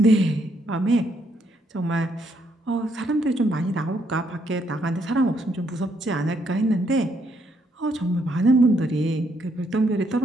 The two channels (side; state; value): both; normal; correlation 0.73